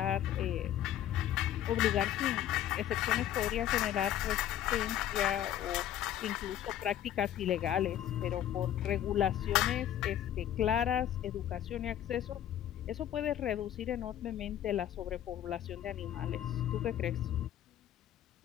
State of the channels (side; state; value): right; quieter; 11.4 dB